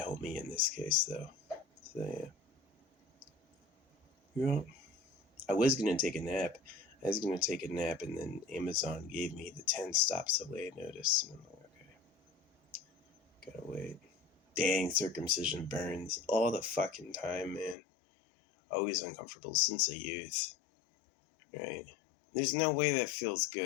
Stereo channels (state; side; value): drops out; right; at 17.8 s